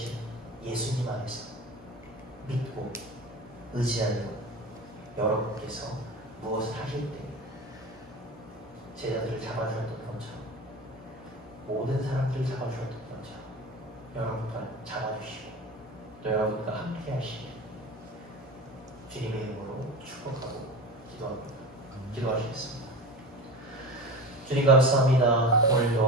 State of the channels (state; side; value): normal; both; correlation 0.30